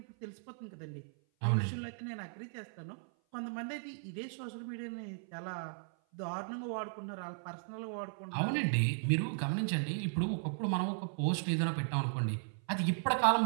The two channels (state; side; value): silent; left; 53 dB below the other